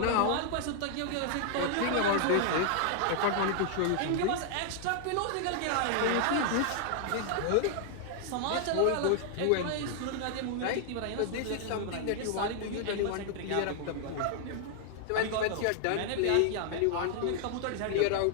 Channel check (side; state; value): both; different; correlation 0.00